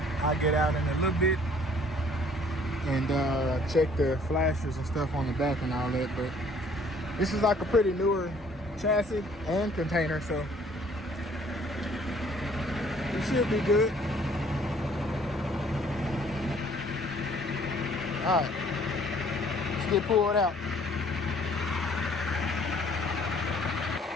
I'll get out in a little bit and check the flashers and stuff on the back and all that. But this is like a pretty newer chassis and container, so it should be good. Alright, let's get pulled out.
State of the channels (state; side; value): normal; both; correlation 0.58